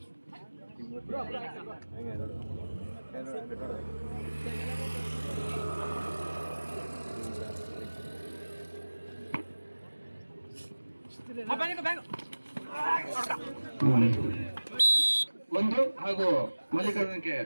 ಒಂದು ಹಾಗೂ ಮಲ್ಲಿಕಾರ್ಜುನಕ್ಕೆ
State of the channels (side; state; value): both; inverted; correlation -1.00